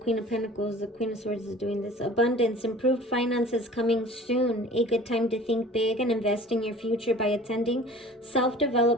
of Pentacles. The Queen of Swords is doing this. Abundance. Improved finances coming soon. A good time to think big and invest in your future by attending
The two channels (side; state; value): both; normal; correlation 0.44